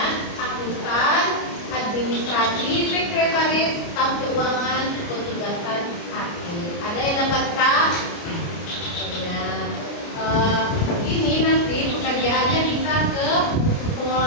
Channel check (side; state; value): right; late; 29 ms